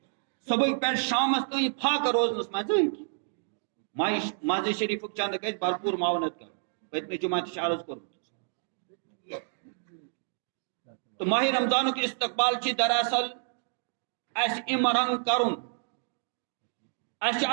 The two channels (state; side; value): silent; left; digital silence